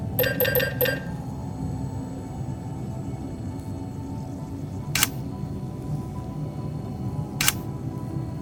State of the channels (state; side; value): identical; both; correlation 1.00